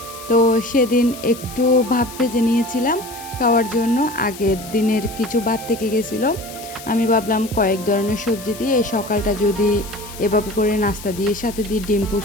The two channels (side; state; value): left; noise; hiss, 15 dB below the sound